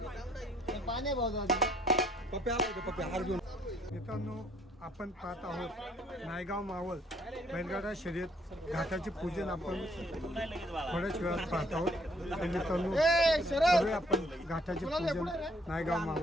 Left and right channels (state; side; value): normal; both; correlation 0.64